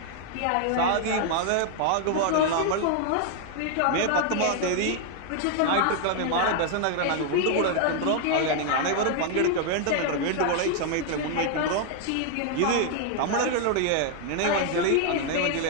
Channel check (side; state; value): both; different; correlation 0.00